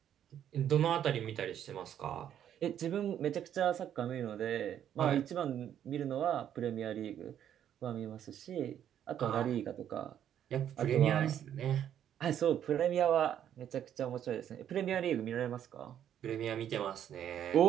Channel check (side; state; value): left; quieter; 10.0 dB